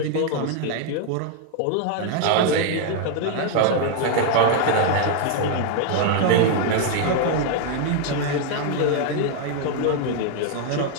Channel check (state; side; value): different; both; correlation 0.00